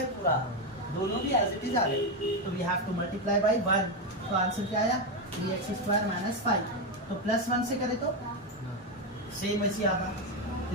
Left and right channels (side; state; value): both; normal; correlation 0.08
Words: पूरा, दोनों भी एज इट इज आ गए, तो we have to multiply by 1। तो आंसर क्या आया, 3x स्क्वायर माइनस 5, तो प्लस 1 से करें तो सेम वैसे आता,